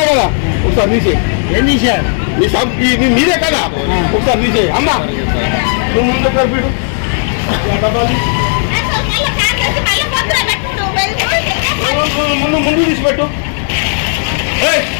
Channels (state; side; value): silent; right; 64 dB below the other